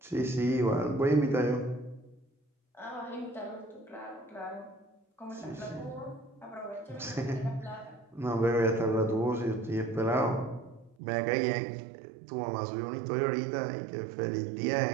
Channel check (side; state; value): left; drops out; at 11.0 s